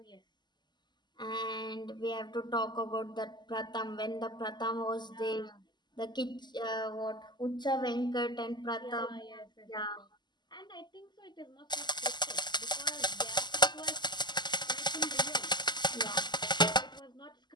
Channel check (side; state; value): right; late; 0.21 ms